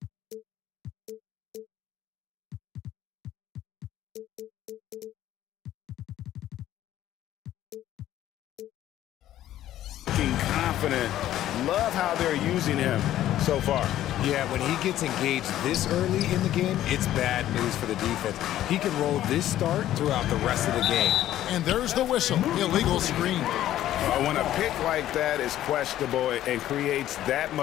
Confident. Love how they're using him so far. Yeah, when he gets engaged this early in the game, it's bad news for the defense. He can roll this start throughout the rest of the game. And there's the whistle. Illegal screen. When a pick like that is questionable and creates that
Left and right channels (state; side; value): quieter; right; 12.9 dB